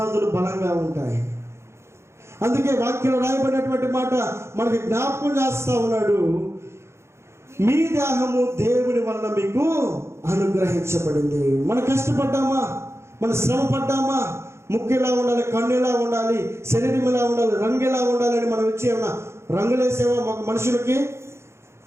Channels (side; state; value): left; late; 0.13 ms